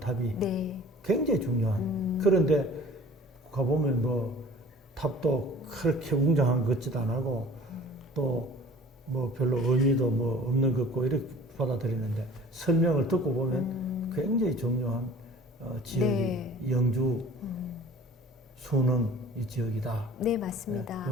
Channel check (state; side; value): normal; both; correlation 0.47